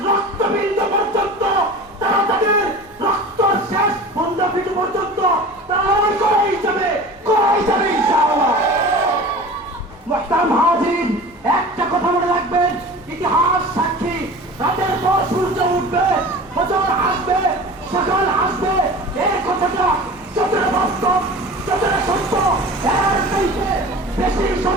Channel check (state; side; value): normal; both; correlation 0.37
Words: রক্তবিন্দু পর্যন্ত, তারা তাদের রক্ত শেষ বন্ধবিন্দু পর্যন্ত তারা করেই যাবে ইনশাআল্লাহ। মুহতারাম হাজিরিন, একটা কথা মনে রাখবেন, ইতিহাস সাক্ষী, রাতের পর সূর্য উঠবে, ফজর আসবে, সকাল আসবে, এই কথাটা যতটা বাস্তব, যতটা সত্য, এর চাইতে বেশি